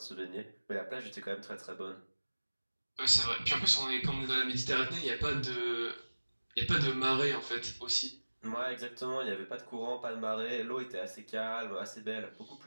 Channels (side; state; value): both; inverted; correlation -1.00